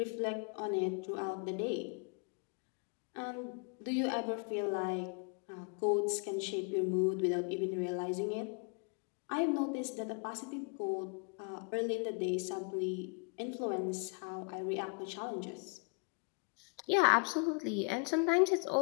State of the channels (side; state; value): right; quieter; 35.6 dB